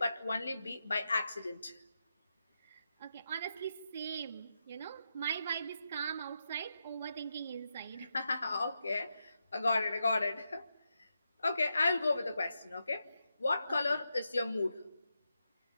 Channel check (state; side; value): inverted; both; correlation -0.86